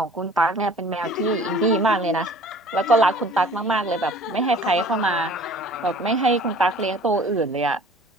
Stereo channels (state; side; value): normal; both; correlation 0.48